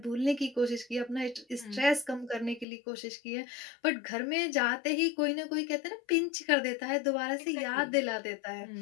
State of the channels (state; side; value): drops out; right; at 2.7 s